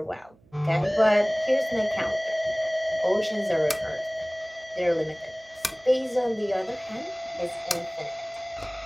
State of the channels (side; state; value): right; noise; hum, 30 dB below the sound